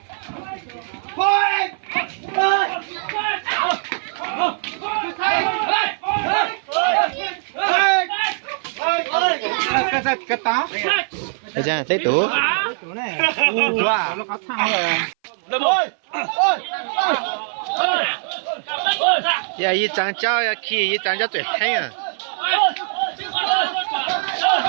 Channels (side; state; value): left; silent; 60 dB below the other